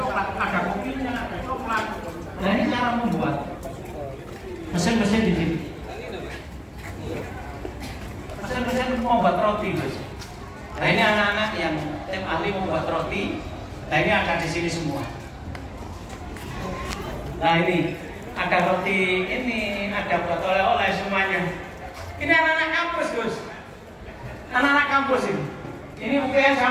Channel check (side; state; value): both; identical; correlation 1.00